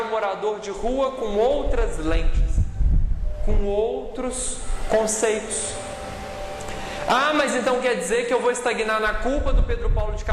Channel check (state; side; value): identical; both; correlation 1.00